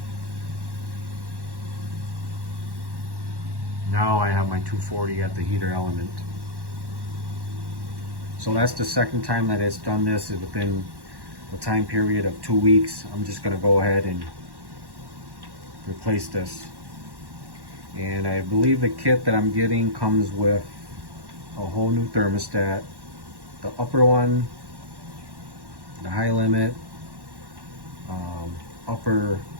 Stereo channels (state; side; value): late; left; 1.1 ms